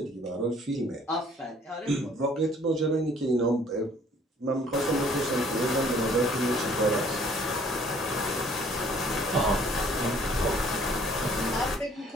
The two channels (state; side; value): normal; both; correlation 0.57